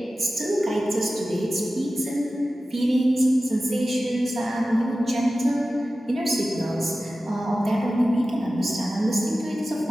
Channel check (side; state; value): both; normal; correlation 0.95